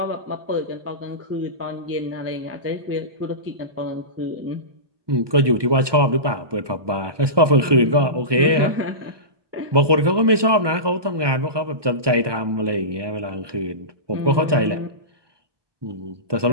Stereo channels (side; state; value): left; late; 1.2 ms